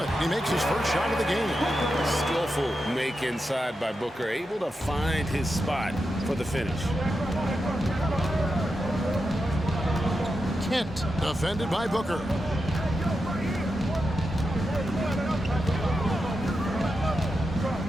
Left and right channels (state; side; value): normal; both; correlation 0.88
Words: He makes his first shot of the game. Skillful make inside by Booker, able to find his spot for the finish. Kent defended by Booker.